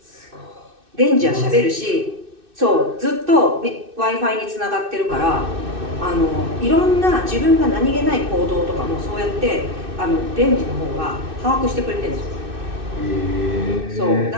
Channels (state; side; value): late; left; 2.6 ms